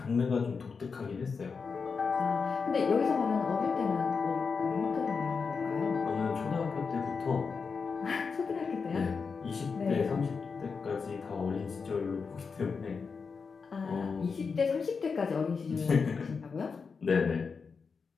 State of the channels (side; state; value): right; quieter; 5.2 dB